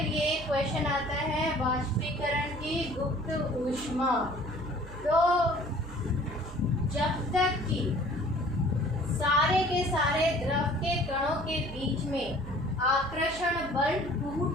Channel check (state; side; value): noise; right; hum, 14 dB below the sound